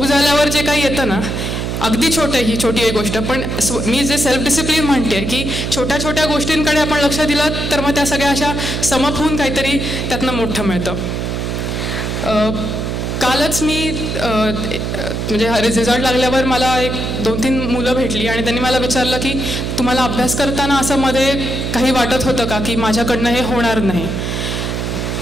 झाल्यावर जे काही येतं ना, अगदी छोटं, ही छोटी एक गोष्ट, पण मी जे सेल्फ डिसिप्लिन म्हणते की छोट्या छोट्या गोष्टींकडे आपण लक्ष दिलं तर मग त्या सगळ्या अशा समप होऊन काहीतरी त्यातनं मोठं मिळतं. कालच मी म्हणजे रिझल्ट लागल्यावर मला 1-2-3 मुलं भेटली आणि त्यांनी मला विचारलं की तुम्हाला अभ्यास करताना असं मध्ये काही वाटत होतं का की माझ्याकडनं हे होणार नाही.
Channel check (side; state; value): right; noise; hum, 3 dB below the sound